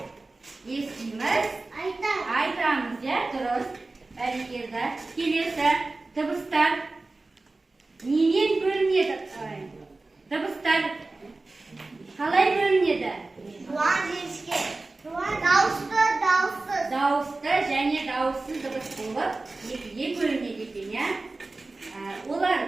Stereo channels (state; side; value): quieter; left; 3.3 dB